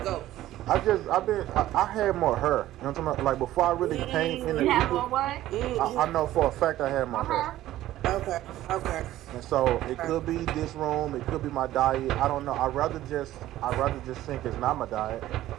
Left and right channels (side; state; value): left; quieter; 14.4 dB